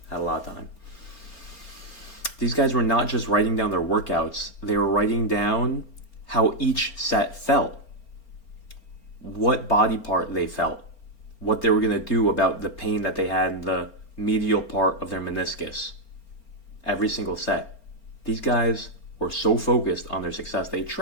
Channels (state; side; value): late; right; 4.4 ms